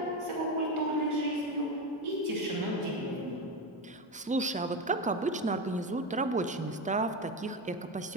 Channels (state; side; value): normal; both; correlation 0.16